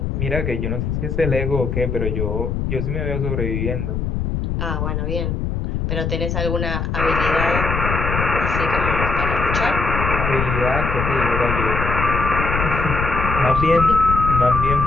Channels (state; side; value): noise; left; rumble, 2 dB below the sound